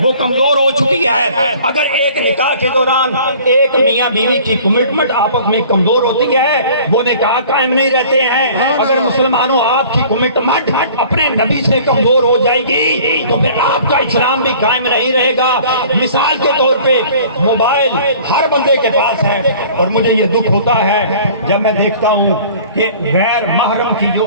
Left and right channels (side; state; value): both; inverted; correlation -0.49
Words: وہ کمزور ہو چکی ہے۔ اگر ایک نکاح کے دوران ایک میاں بیوی کی کمٹمنٹ آپس میں کمزور ہوتی ہے وہ نکاح قائم نہیں رہتے ہیں۔ اگر مسلمانوں آپ کی کمٹمنٹ اپنے نبی سے کمزور ہو جائے گی تو پھر آپ کا اسلام بھی قائم نہیں رہے گا۔ مثال کے طور پہ موبائل ہر بندے کے پاس ہے، اور مجھے یہ دکھ ہوتا ہے جب میں دیکھتا ہوں کہ غیر محرم کی جو